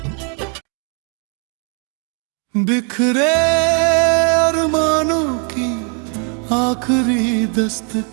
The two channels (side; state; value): left; quieter; 38.4 dB